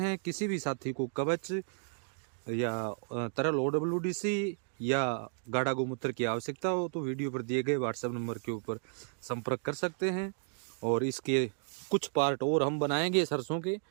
किसी भी साथी को कवच या तरल OWDC या गाढ़ा गोमूत्र की आवश्यकता हो तो वीडियो पर दिए गए व्हाट्सएप नंबर के ऊपर संपर्क कर सकते हैं। और इसके कुछ पार्ट और हम बनाएंगे सरसों के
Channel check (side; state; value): left; silent; digital silence